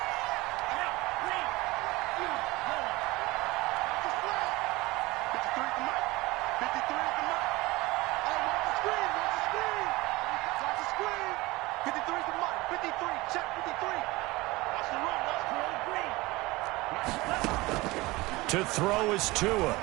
To throw is Tua.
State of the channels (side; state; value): left; quieter; 21.4 dB